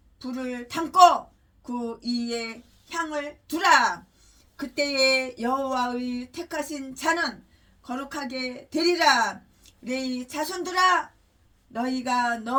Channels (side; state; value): both; identical; correlation 1.00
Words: 불을 담고 그 위에 향을 두라. 그때에 여호와의 택하신 자는 거룩하게 되리라. 레이 자손들아 너희가